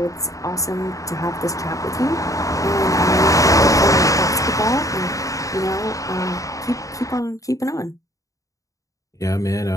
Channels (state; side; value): late; right; 0.16 ms